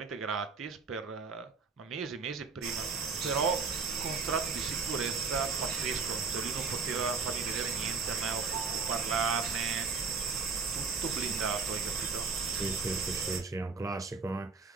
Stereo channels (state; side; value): quieter; left; 4.9 dB